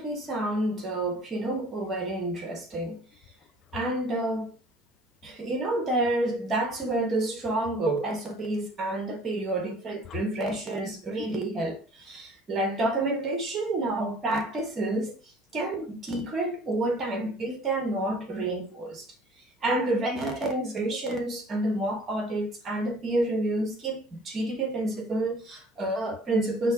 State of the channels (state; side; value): normal; both; correlation 0.50